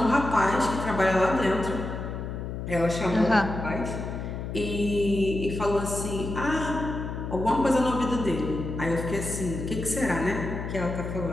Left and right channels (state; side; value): noise; left; hum, 6 dB below the sound